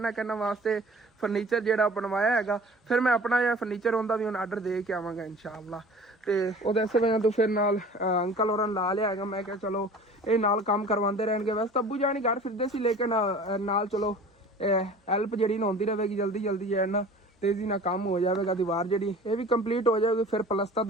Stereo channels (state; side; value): normal; both; correlation 0.44